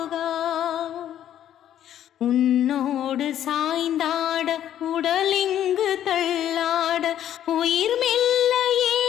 உன்னோடு சாய்ந்தாட உடலிங்கு தள்ளாட உயிர் மெல்ல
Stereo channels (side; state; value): right; quieter; 11.0 dB